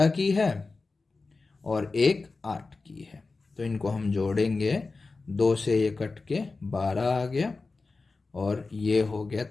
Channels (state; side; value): quieter; right; 3.8 dB